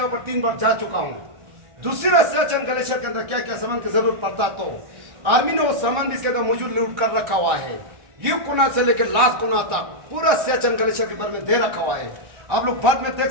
पर 3 बार जा चुका हूँ। दूसरी सियाचिन ग्लेशियर के अंदर क्या क्या सामान की जरूरत पड़ता तो आर्मी ने वो सामान भी इसके अंदर मौजूद लूट कर रखा हुआ है। ये कोना से लेकर लास्ट कोना तक पूरा सियाचिन ग्लेशियर के बारे में दे रखा हुआ है। आप लोग बाद में देख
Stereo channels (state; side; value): late; left; 1.4 ms